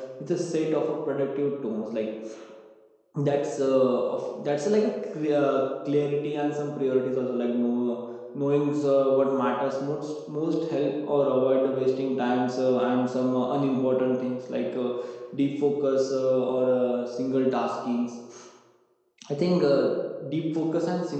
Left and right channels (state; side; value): identical; both; correlation 1.00